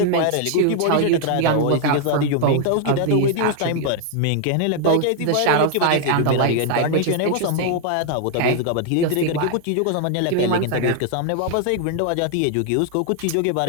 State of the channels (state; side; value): different; both; correlation 0.00